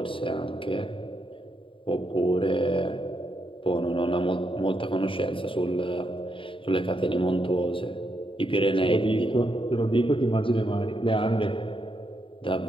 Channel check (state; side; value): late; right; 0.25 ms